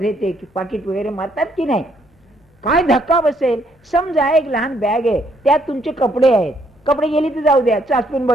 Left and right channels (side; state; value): both; normal; correlation 0.70